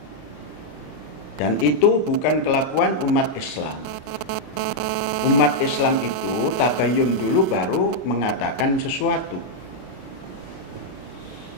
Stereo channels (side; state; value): right; late; 33 ms